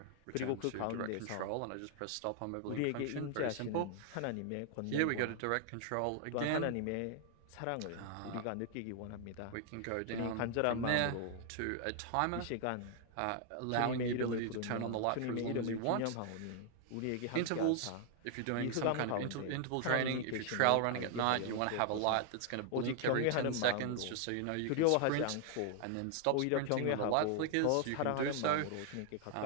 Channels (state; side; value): different; both; correlation 0.00